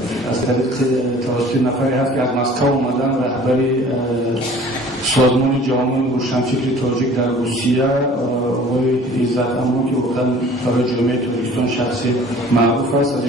از طریق توسط نفری هست که از مسکو اومدن رهبری سازمان جامعه روشنفکر تاجیک در روسیه آقای عزت امان که واقعا برای جامعه تاجیکستان شخصی معروف است. از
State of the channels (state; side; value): normal; both; correlation 0.49